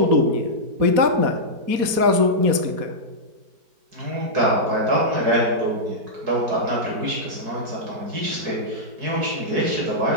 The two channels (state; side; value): late; left; 4.2 ms